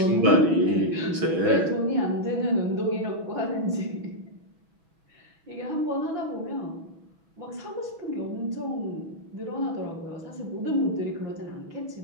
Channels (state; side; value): late; left; 6.1 ms